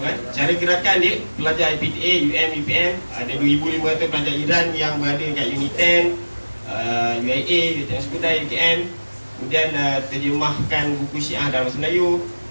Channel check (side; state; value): both; inverted; correlation -1.00